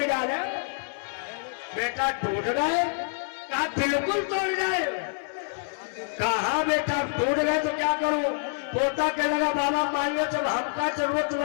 डाले। बेटा टूट गए? कहा बिल्कुल तोड़ गए। कहा बेटा टूट गए तो क्या करूं? पोता कहने लगा बाबा मान लो जब हमका जरूरत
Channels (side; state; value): right; silent; 60 dB below the other